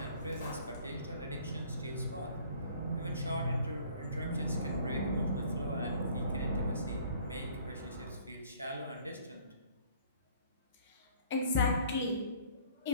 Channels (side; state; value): both; inverted; correlation -0.55